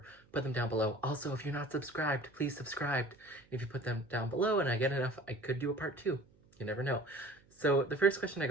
put them down below. Also, if you're not subscribed, please subscribe. If you put them down below and I get enough, I could do a part 2. You never know. So the first question I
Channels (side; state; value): right; noise; hum, 30 dB below the sound